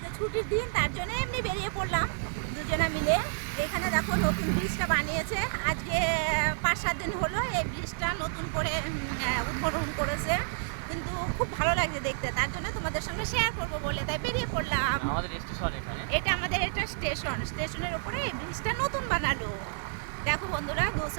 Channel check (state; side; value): silent; left; digital silence